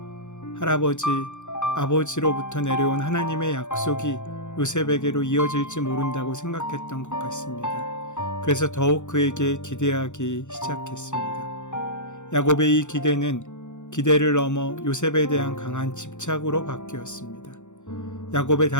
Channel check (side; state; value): right; late; 0.84 ms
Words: 할아버지, 아버지로부터 내려온 하나님의 약속이 요셉에게로 이어질지 모른다고 생각했던 것 같습니다. 그래서 더욱 그에게 기대하기 시작했습니다. 야곱의 이 기대를 넘어 요셉에 대한 강한 집착으로 바뀌었습니다. 야곱의